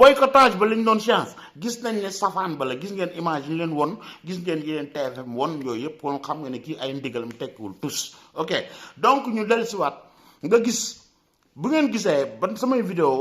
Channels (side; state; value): both; identical; correlation 1.00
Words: ba lañ doon chance gis nañ ne safaan ba la gis ngeen image yi leen won gis ngeen yéen TFM won yooyu yëpp kon xam nga ne kii ay ndigalam tekkiwul tous ok donc ñu dellusiwaat nga gis bu ngeen gisee ban samay vidéo